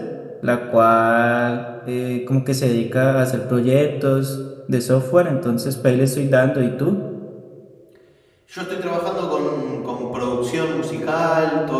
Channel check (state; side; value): identical; both; correlation 1.00